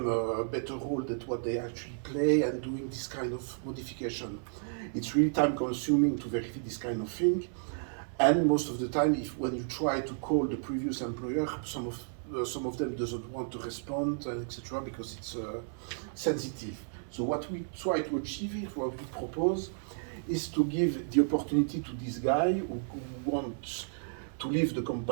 a better role than what they actually play, and doing this kind of modification. It's really time consuming to verify this kind of thing, and most of the time, when you try to call the previous employer, some of them doesn't want to respond, etc., because it's sensitive. So what we try to achieve here, what we propose, is to give the opportunity to this guy who wants to leave the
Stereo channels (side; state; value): left; silent; 56 dB below the other